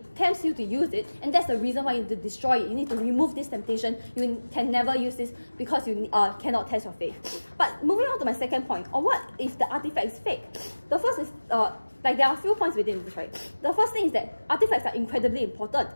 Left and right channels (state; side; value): inverted; both; correlation -1.00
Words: use it, and that's the reason why you need to destroy it. You need to remove this temptation. You can never use this because you cannot test your faith. But moving on to my second point, or what if the artifact is fake? The first is there are a few points within this, right? The first thing is that artifacts are incredibly important.